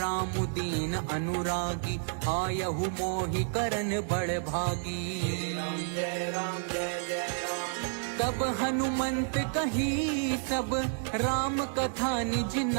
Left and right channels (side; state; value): left; silent; digital silence